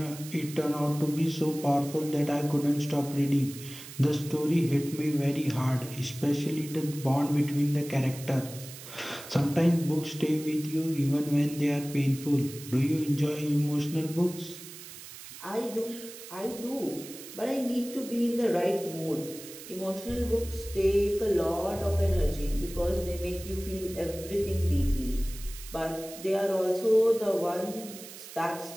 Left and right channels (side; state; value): right; noise; hiss, 14 dB below the sound